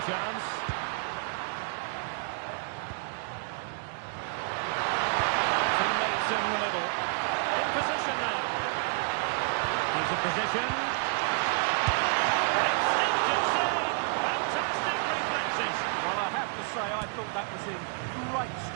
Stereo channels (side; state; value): left; quieter; 39.7 dB